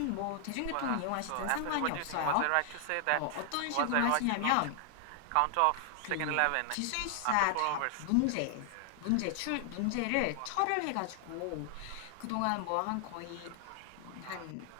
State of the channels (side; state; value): both; different; correlation 0.00